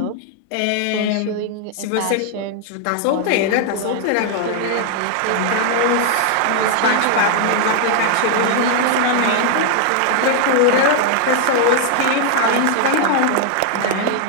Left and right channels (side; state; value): both; different; correlation 0.00